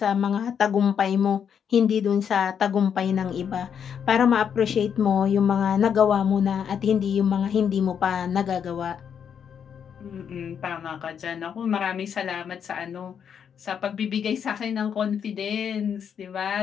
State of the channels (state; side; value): quieter; right; 7.8 dB